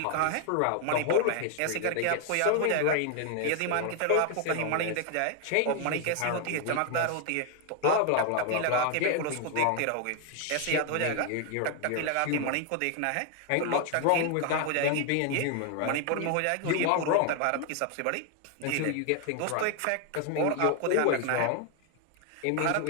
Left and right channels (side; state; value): both; different; correlation 0.00